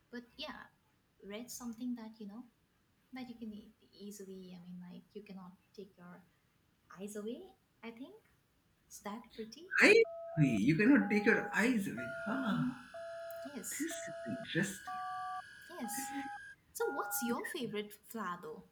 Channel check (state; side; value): identical; both; correlation 1.00